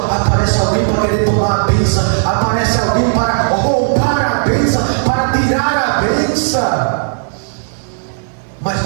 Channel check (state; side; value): silent; left; digital silence